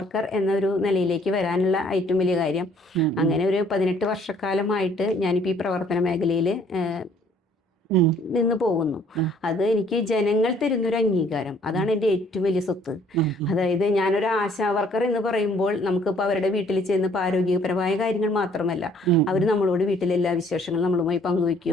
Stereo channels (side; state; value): both; normal; correlation 0.60